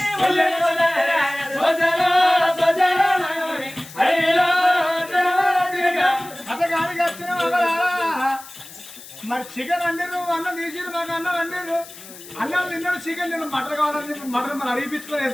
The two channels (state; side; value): noise; left; hiss, 17 dB below the sound